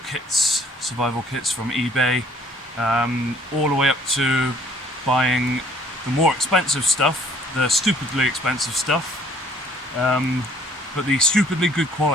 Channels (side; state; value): both; normal; correlation 0.59